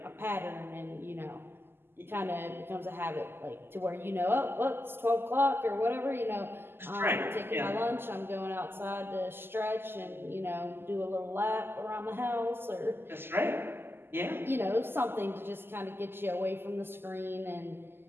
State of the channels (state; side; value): late; left; 0.11 ms